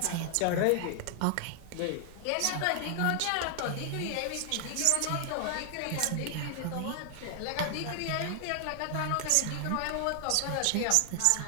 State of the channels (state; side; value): different; both; correlation 0.00